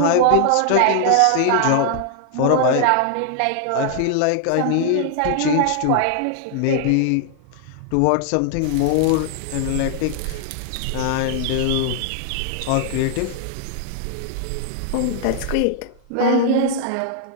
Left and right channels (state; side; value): different; both; correlation 0.00